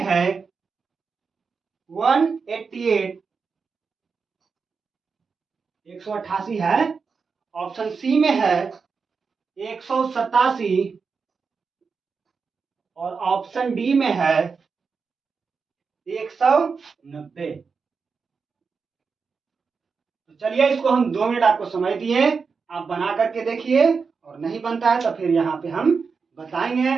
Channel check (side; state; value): left; quieter; 5.2 dB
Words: है 188, 188 है, ऑप्शन सी में है 187 और ऑप्शन डी में है 190। तो चलिए इसको हम 2 मिनट आपको समय दिए, आप बना करके देखिए, और नहीं बनता है तो फिर यहाँ पे हम बताएंगे